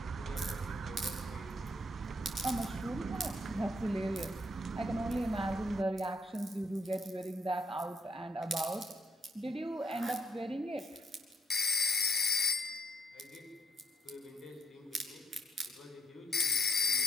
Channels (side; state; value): both; normal; correlation 0.68